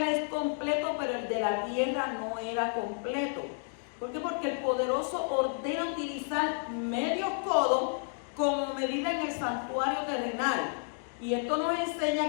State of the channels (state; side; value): silent; right; 57 dB below the other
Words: es completo, pero el de la tierra no era completo. ¿Por qué? Porque el poderoso ordena utilizar medio codo como medida en el santuario terrenal. Y esto nos